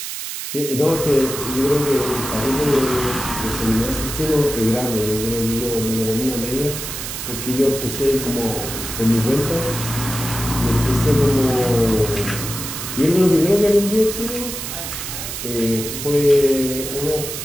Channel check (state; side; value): noise; right; hiss, 6 dB below the sound